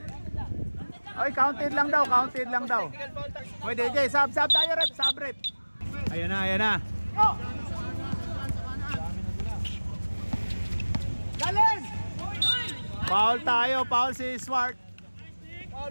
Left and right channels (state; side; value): inverted; both; correlation -1.00